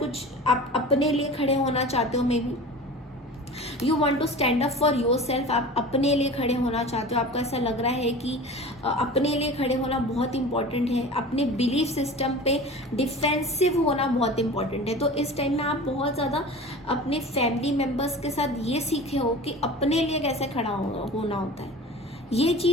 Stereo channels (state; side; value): normal; both; correlation 0.37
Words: आप अपने लिए खड़े होना चाहते हो, maybe you want to stand up for yourself, आप अपने लिए खड़े होना चाहते हो, आपको ऐसा लग रहा है कि अपने लिए खड़े होना बहुत इंपॉर्टेंट है, अपने बिलीफ सिस्टम पे डिफेंसिव होना बहुत इंपॉर्टेंट है। तो इस टाइम में आप बहुत ज़्यादा अपने फैमिली मेम्बर्स के साथ ये सीखे हो कि अपने लिए कैसे खड़ा होना होता है, ये